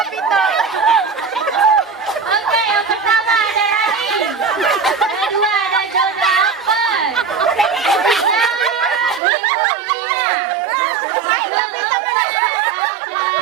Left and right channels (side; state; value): left; drops out; at 9.2 s